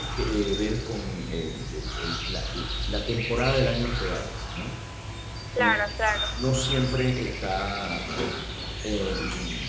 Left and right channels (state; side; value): identical; both; correlation 1.00